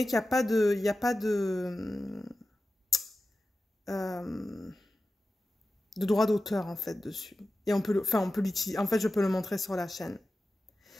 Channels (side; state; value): both; normal; correlation 0.94